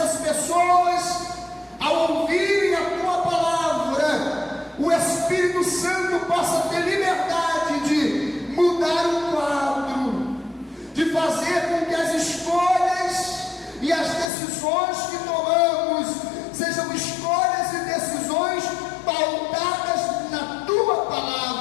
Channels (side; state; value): right; drops out; at 14.2 s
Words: pessoas, ao ouvirem a tua palavra, o Espírito Santo possa ter liberdade de mudar o quadro, de fazer com que as escolhas e as decisões que tomamos sejam escolhas e decisões pautadas na tua